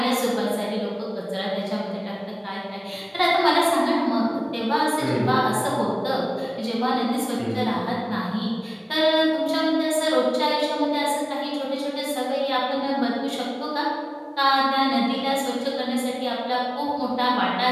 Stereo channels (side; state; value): both; identical; correlation 1.00